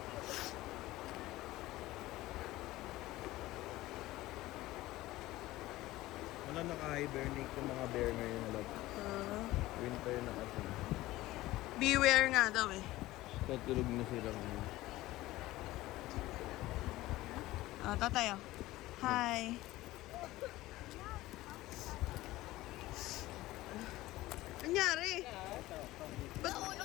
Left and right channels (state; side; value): quieter; right; 17.4 dB